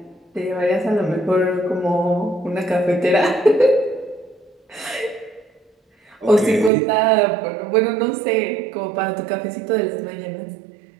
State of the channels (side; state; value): left; drops out; at 6.7 s